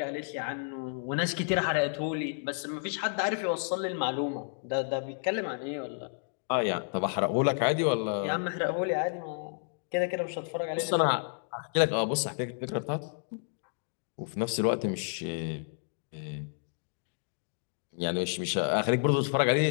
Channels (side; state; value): right; silent; digital silence